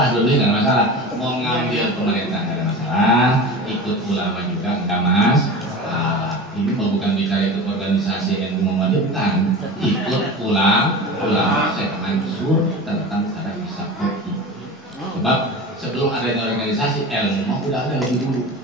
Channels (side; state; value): both; normal; correlation 0.32